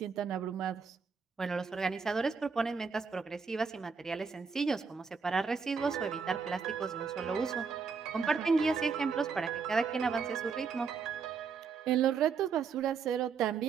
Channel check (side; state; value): left; quieter; 5.6 dB